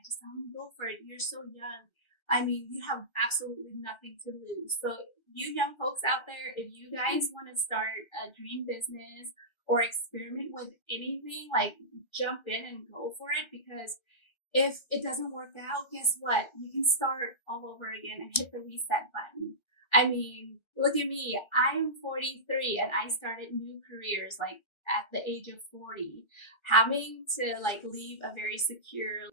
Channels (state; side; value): late; right; 1.3 ms